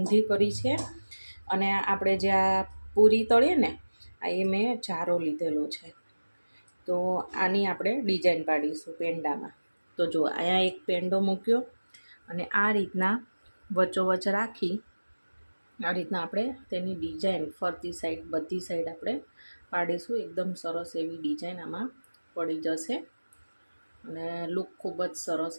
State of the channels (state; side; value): inverted; both; correlation -1.00